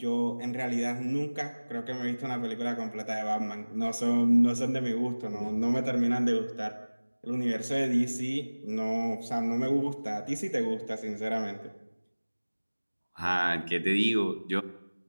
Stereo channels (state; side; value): inverted; both; correlation -1.00